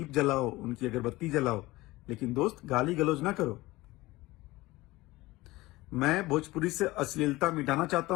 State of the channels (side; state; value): right; quieter; 19.5 dB